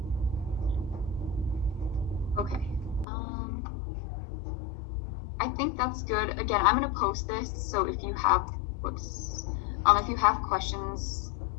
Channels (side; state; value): right; drops out; at 3.1 s